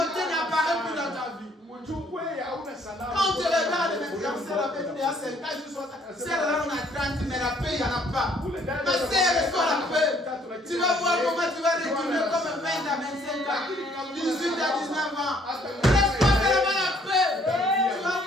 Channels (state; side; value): normal; both; correlation 0.63